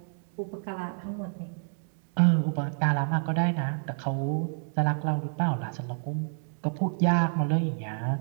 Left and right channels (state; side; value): silent; left; digital silence